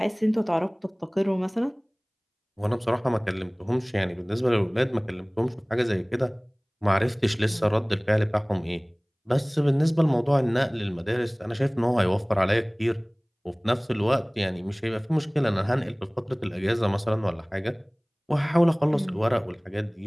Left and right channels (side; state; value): both; identical; correlation 1.00